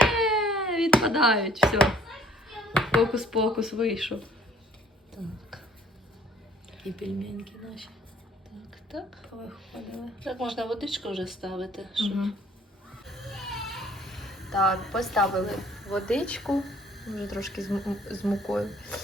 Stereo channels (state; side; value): normal; both; correlation 0.58